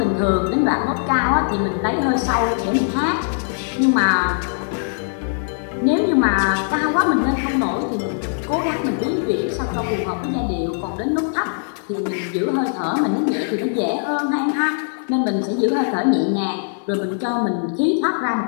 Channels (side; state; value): right; silent; 57 dB below the other